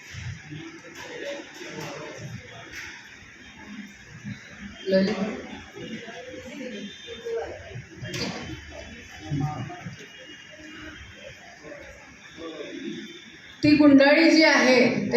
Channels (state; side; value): identical; both; correlation 1.00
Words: ती गुंडाळी जी आहे